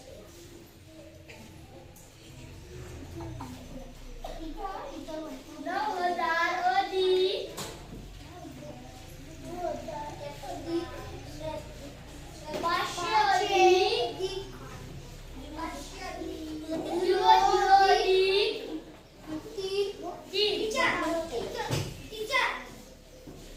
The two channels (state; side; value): identical; both; correlation 1.00